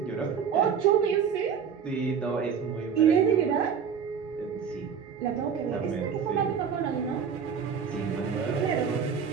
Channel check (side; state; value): left; quieter; 7.0 dB